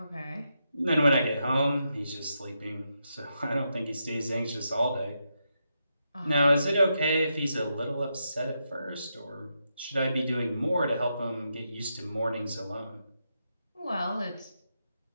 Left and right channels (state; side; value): inverted; both; correlation -0.84